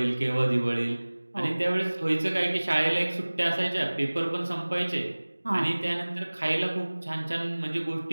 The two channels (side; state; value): both; inverted; correlation -1.00